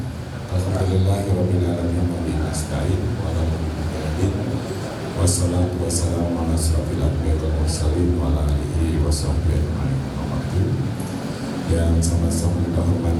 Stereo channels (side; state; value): both; identical; correlation 1.00